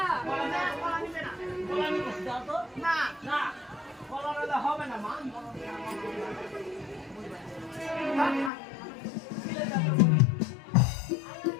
কলা নিবে না কলা নিবে দাও তো না। না কলা নিলে হবে না মা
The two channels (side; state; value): right; drops out; at 8.5 s